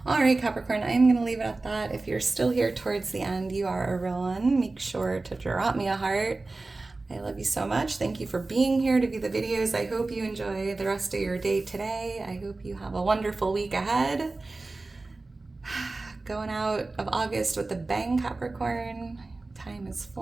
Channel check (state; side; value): quieter; left; 3.3 dB